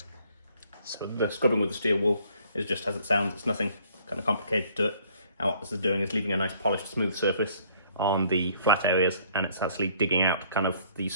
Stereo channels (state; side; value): inverted; both; correlation -0.60